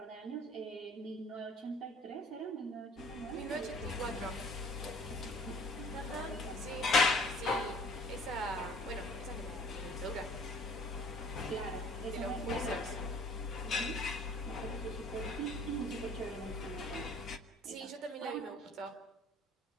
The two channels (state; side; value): normal; both; correlation 0.53